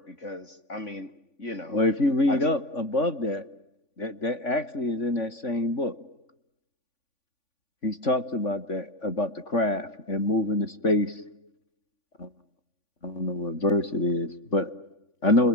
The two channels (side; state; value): right; late; 3.5 ms